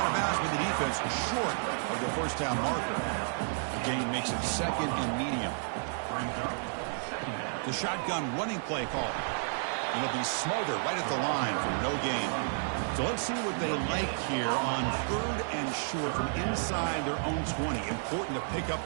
of bounds with the defense short of the first down marker. The gain makes it second and medium. The shotgun running play call. And it'll be smothered right at the line for no gain. So let's see what they like here on 3rd and short from inside their own 20. Important to pick up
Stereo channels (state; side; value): silent; left; 57 dB below the other